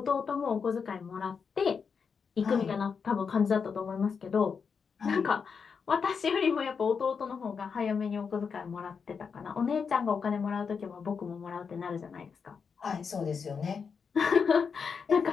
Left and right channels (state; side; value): quieter; right; 5.9 dB